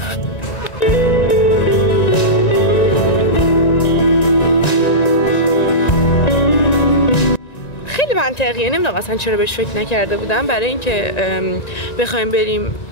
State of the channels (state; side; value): late; right; 1.9 ms